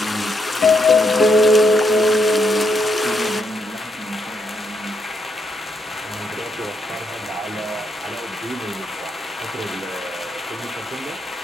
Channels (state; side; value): normal; both; correlation 0.77